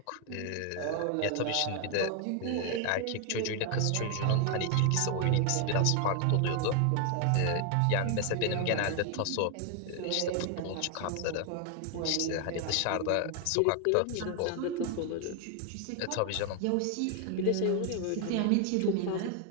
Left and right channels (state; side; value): different; both; correlation 0.00